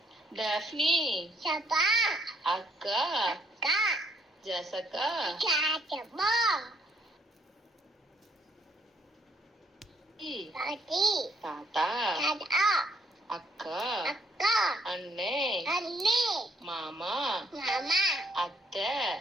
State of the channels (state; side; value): normal; both; correlation 0.68